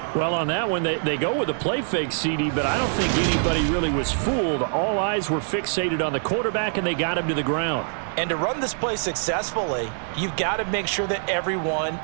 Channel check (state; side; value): silent; left; 62 dB below the other